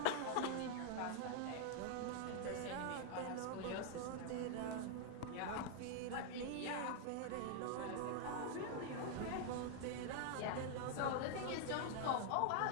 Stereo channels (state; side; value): different; both; correlation 0.00